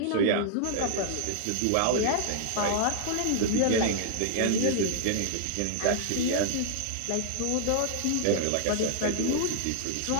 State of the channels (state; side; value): different; both; correlation -0.01